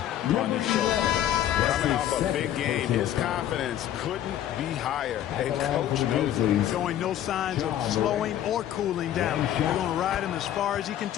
on his shoulder. Coming off a big game, his confidence couldn't be higher. And coach knows it. Showing no signs of slowing or cooling down. They're going to ride him as far as he can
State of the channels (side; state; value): right; quieter; 11.5 dB